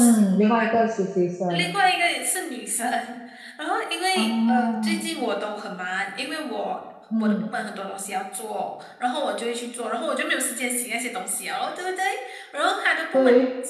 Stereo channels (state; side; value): identical; both; correlation 1.00